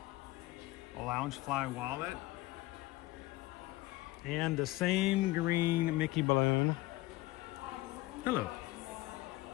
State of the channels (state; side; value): quieter; right; 18.6 dB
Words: A Loungefly wallet. And the same green Mickey balloon. Hello.